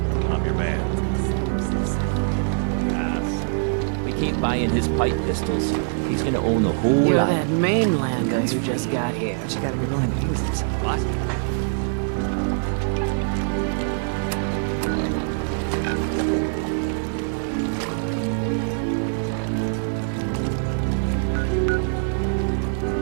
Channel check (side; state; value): left; silent; digital silence